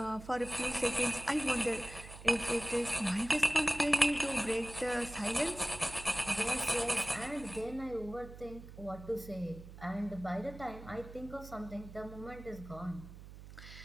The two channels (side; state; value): right; noise; hum, 15 dB below the sound